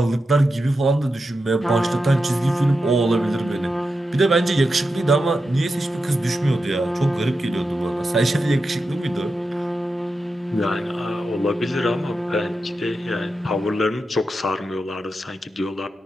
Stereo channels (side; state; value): both; normal; correlation 0.89